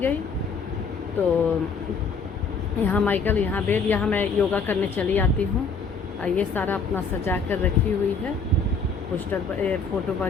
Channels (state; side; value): quieter; right; 4.7 dB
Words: तो यहाँ माइकल, यहाँ बेड, यहाँ मैं योगा करने चली आती हूँ। ये सारा अपना सजा कर रखी हुई है, पोस्टर फ़ोटो